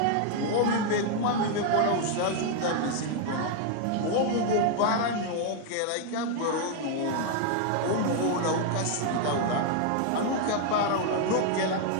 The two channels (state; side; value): different; both; correlation 0.00